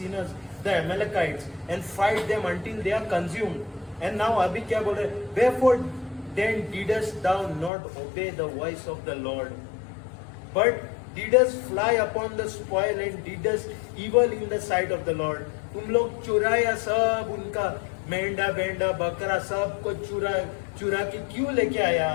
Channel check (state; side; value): drops out; right; at 7.7 s